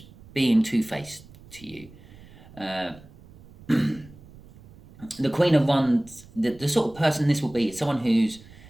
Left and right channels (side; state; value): right; noise; rumble, 22 dB below the sound